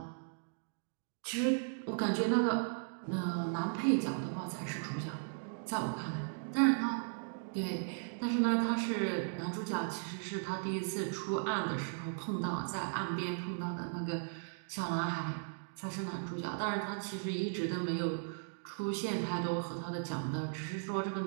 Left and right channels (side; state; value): left; silent; digital silence